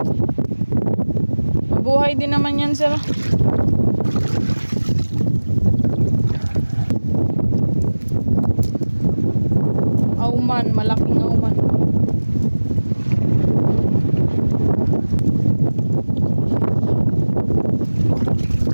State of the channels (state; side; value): inverted; both; correlation -1.00